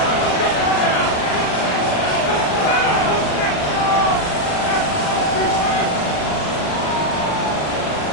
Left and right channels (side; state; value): right; late; 39 ms